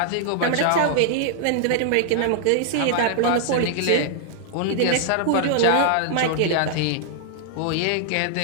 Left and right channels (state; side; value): different; both; correlation -0.01